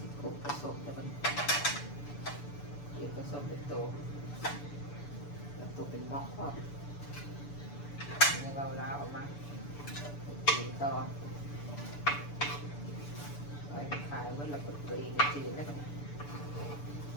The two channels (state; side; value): late; right; 6.9 ms